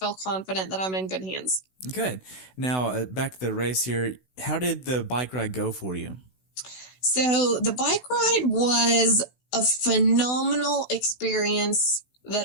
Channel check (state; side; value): late; right; 16 ms